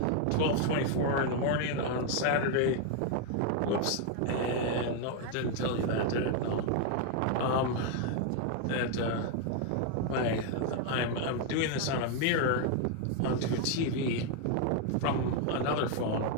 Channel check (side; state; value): both; different; correlation 0.01